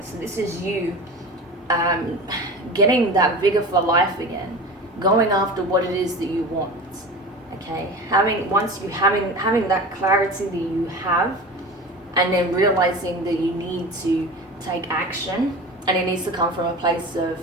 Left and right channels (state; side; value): normal; both; correlation 0.33